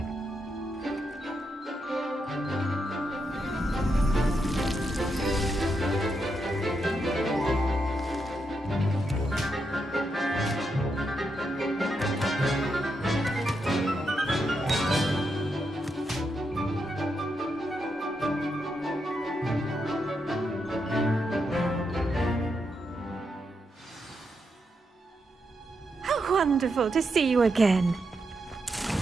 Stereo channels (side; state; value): both; normal; correlation 0.83